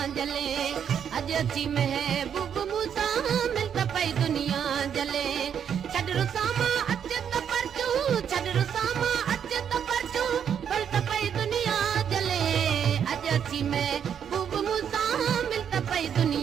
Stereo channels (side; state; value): left; quieter; 8.2 dB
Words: जले, अजी महबूब मूसा मिलता पई दुनिया जले। छड़ रुसामा अचे त परचू, छड़ रुसामा अचे त परचू, मिलता पई दुनिया जले। अजी महबूब मूसा मिलता पई